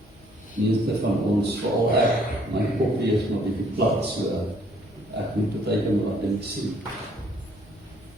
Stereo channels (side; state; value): both; normal; correlation 0.63